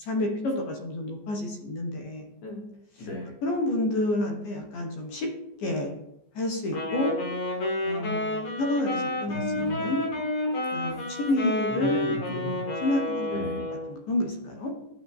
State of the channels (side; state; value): right; late; 14 ms